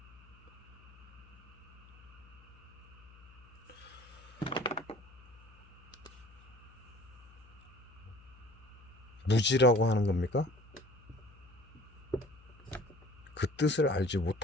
무지라고 하는 겁니까? 그 뜻을 알지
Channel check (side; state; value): left; noise; hum, 22 dB below the sound